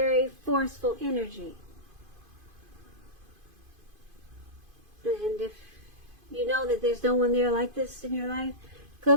forceful energy. And if you know that there's no one there like this in your life,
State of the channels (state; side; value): late; left; 2.5 ms